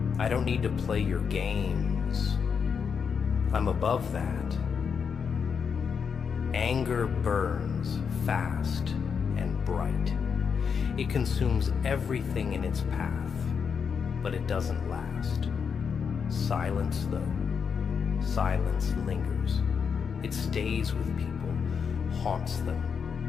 I don't need to play your games. I'm above that. Anger burns fast and bright. It consumes everything in its path, but it doesn't last. Silence, though. Silence lingers. It stays with people, haunts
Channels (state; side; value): quieter; right; 6.4 dB